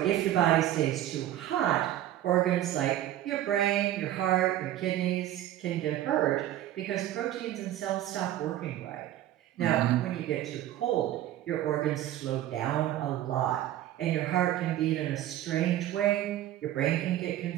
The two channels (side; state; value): left; quieter; 13.1 dB